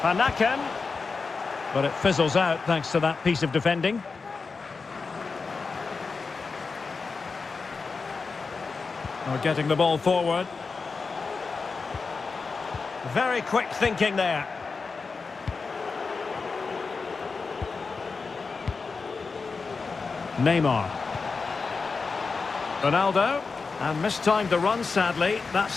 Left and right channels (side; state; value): right; quieter; 4.6 dB